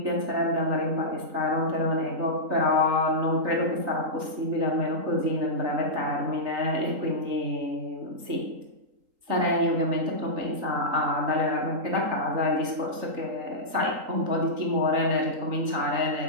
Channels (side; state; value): left; late; 3.8 ms